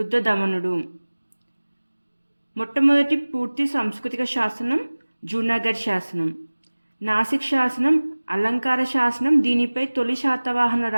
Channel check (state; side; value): inverted; both; correlation -1.00